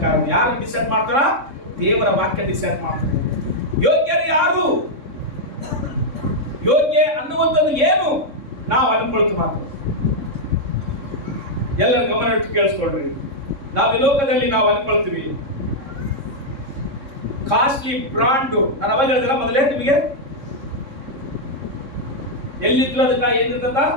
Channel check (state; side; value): late; left; 3.6 ms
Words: ಯಾರು ಡಿಸೈಡ್ ಮಾಡ್ತಾರ? ದೇವರ ವಾಕ್ಯ ಡಿಸೈಡ್ ಮಾಡ್ತಾರೆ. ಯೋಗ್ಯರು ಯಾರು, ಯೋಗ್ಯ ಅನ್ನುವಂಥದ್ದು ಏನು ನಾವು ಅನ್ಕೊಳ್ತೀವಿ ಮಾತು. ಎಲ್ಲರ ಗಮನ ಇಟ್ಟು ಕೇಳಿಸ್ಕೊಡ್ರಿ. ನಾವು ಈ ಲೋಕದಲ್ಲಿ ನಾವು ಅನ್ಕೊಳ್ತೀವಿ ಕಾಸ್ಟ್ಲಿ ಬ್ರಾಂಡ್. ನಾನು ಅವಾಗ ಹೇಳಿದ್ರ ಮೊದಲೇ ನಿಮಗೆ, ಎಲ್ಲಿದ್ರು ಅದಕ್ಕ ಏನಿರ್ತದ